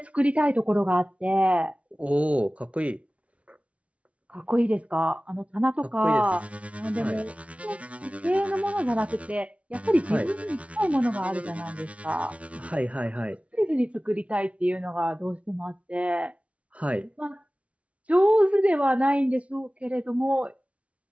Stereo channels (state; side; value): late; left; 0.064 ms